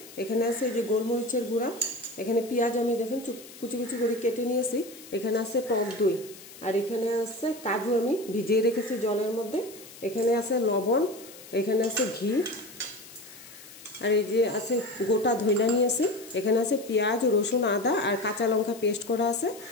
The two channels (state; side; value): noise; left; hiss, 18 dB below the sound